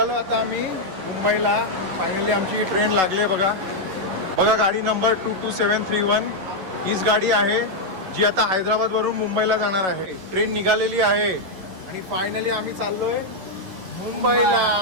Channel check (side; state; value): left; late; 10 ms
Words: आता आम्ही मुंबईला. फायनली आमची ट्रेन लागली आहे बघा. बघा गाडी नंबर 22731 हीच गाडी आहे जी आता हैदराबादवरून मुंबईला जाणार आहे. ट्रेन निघालेली आहे आणि फायनली आम्ही चाललोय मुंबईला.